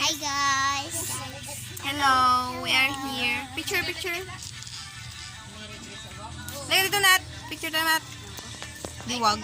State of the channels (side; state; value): both; identical; correlation 1.00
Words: guys. Hello. We are here. Picture. Halika dito, Nat. Picture na, Nat. Diwag.